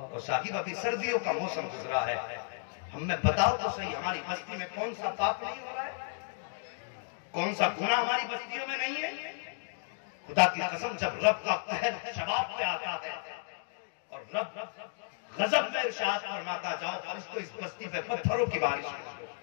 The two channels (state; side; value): silent; right; digital silence